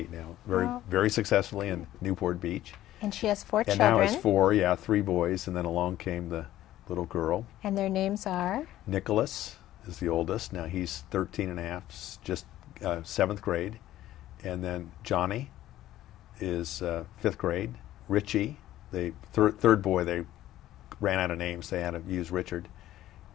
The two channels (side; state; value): right; quieter; 13.9 dB